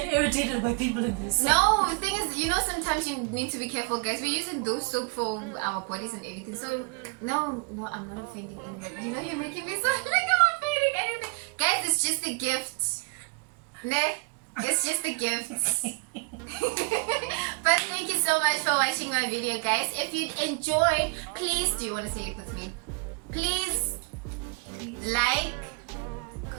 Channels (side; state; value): left; quieter; 31.3 dB